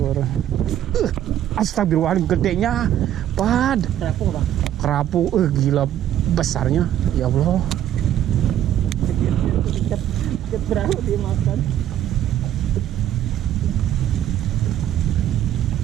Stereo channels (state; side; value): quieter; left; 11.4 dB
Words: Astagfirullahaladzim, gedenya, Pad. Kerapu Bang. Kerapu, gila besarnya, ya Allah. Berapa dia makan?